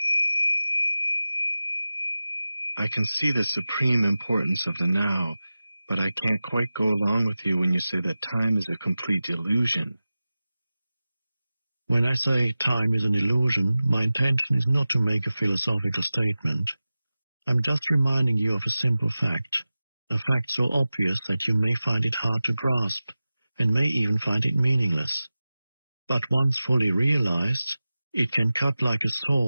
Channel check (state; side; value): inverted; both; correlation -0.95